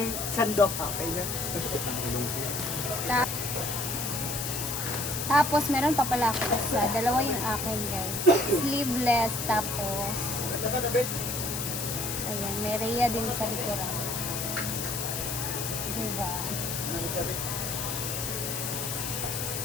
sandok, okay na. Tapos, meron pa pala ako sa dalawa yung akin, guys. Sleeveless, tapos ayan, may Rhea din sa likuran. Diba?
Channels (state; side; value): noise; left; hiss, 3 dB below the sound